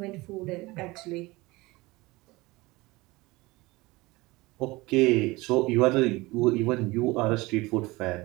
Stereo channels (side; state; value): left; quieter; 21.7 dB